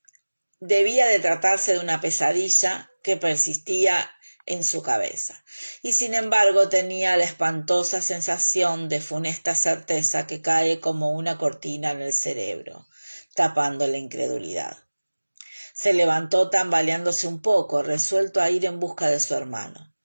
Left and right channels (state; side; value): inverted; both; correlation -1.00